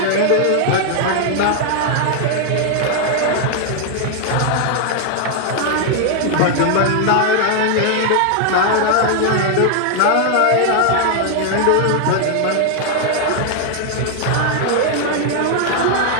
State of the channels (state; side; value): different; both; correlation 0.00